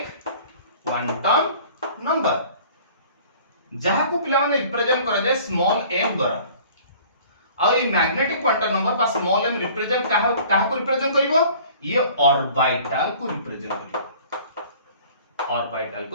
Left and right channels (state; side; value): inverted; both; correlation -0.49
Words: number जहां को पिला माने रिप्रेजेंट करा जाय स्मॉल m द्वारा और ये मैग्नेटिक क्वांटम नंबर पर स्मॉल m रिप्रेजेंट कहा को रिप्रेजेंट करिवो ये ऑर्बिटल को रिप्रेजेंट करिवो